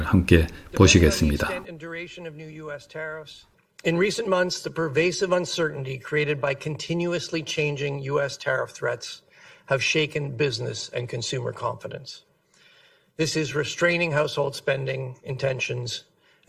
함께 보시겠습니다. In recent months, the pervasive uncertainty created by continuously changing U.S. tariff threats have shaken business and consumer confidence. This is restraining household spending intentions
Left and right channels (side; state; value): both; identical; correlation 1.00